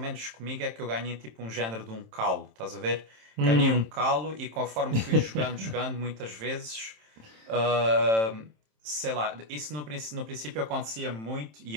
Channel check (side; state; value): left; late; 27 ms